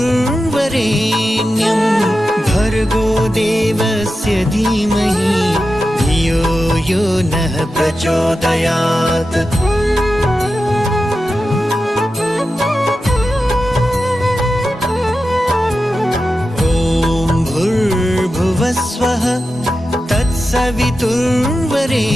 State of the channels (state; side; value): normal; both; correlation 0.91